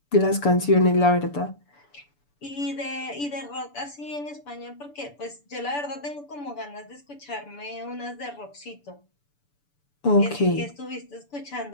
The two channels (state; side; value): late; right; 6.9 ms